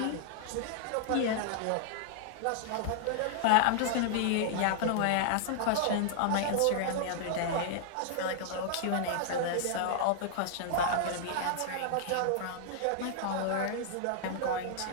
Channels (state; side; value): different; both; correlation -0.01